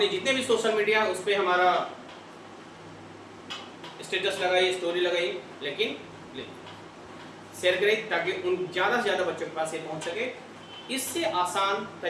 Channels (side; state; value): both; identical; correlation 1.00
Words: जितने भी सोशल मीडिया उस पर हमारा स्टेटस लगाइए, स्टोरी लगाइए, लेकिन शेयर करें ताकि उन ज़्यादा से ज़्यादा बच्चों के पास ये पहुंच सके। इससे आसान